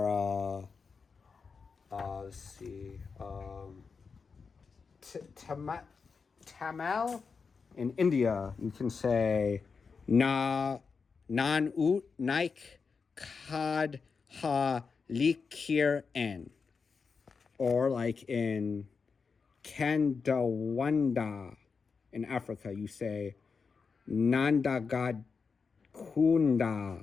let's see, Tamil in India, you can say nan ut naik kad ha likir en, or like in Kandawanda in Africa, you say Nandagad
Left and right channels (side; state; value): right; quieter; 5.2 dB